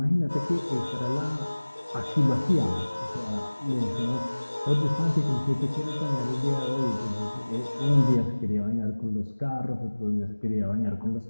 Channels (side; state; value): both; inverted; correlation -1.00